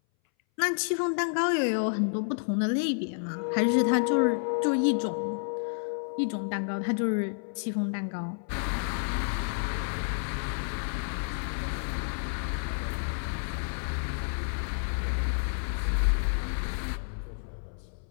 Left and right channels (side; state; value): right; silent; 58 dB below the other